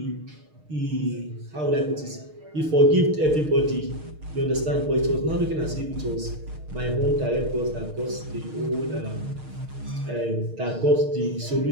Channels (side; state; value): left; late; 6.5 ms